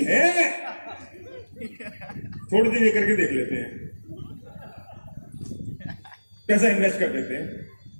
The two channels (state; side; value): inverted; both; correlation -1.00